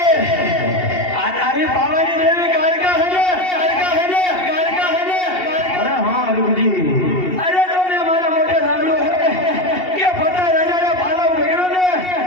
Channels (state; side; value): late; right; 2.7 ms